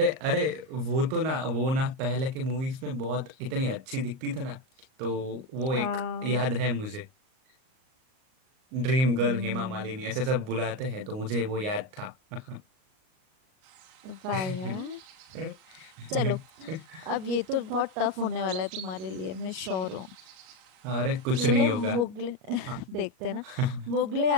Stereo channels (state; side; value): late; left; 38 ms